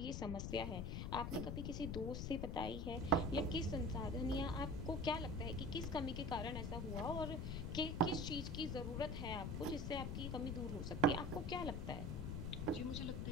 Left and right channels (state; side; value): noise; left; rumble, 2 dB below the sound